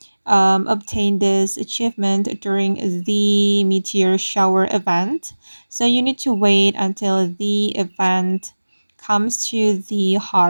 obtain this achievement during the Meteor shower event. So you need to wait until the event comes to the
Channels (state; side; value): inverted; both; correlation -1.00